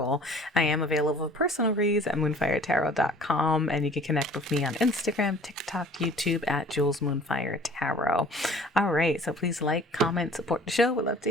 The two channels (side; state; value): both; normal; correlation 0.49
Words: I am available for personal reads at moonfiretarot.com, and you can connect with me on Instagram, TikTok, YouTube at Jules Moonfire Tarot. All right, so please like, comment, support the show. We'd love